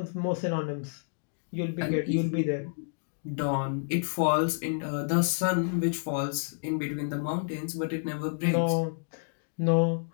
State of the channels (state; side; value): silent; right; digital silence